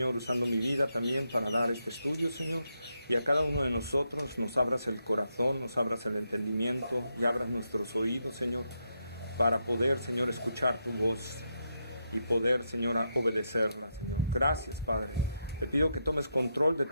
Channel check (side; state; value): both; inverted; correlation -0.82